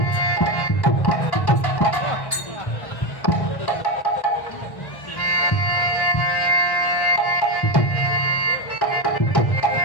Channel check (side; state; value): right; late; 1.1 ms